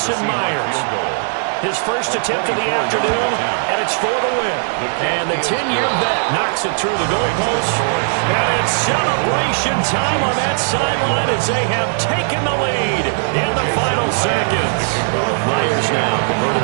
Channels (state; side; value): silent; left; digital silence